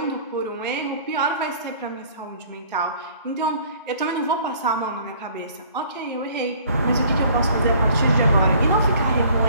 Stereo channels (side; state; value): both; inverted; correlation -0.54